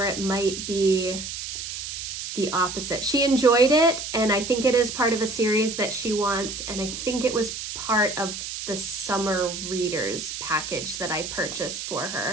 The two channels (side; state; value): right; noise; hiss, 7 dB below the sound